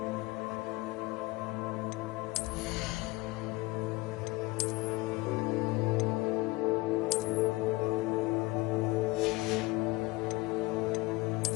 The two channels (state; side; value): quieter; right; 21.9 dB